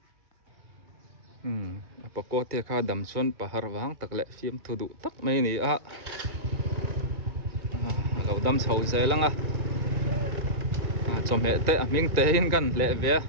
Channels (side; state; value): left; late; 1.7 ms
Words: apa ko te kha dam chuan pahar wang tak le fiam thu du tak mai ni a lo dam chho zelanga cho mẹ te ming te in kan le ve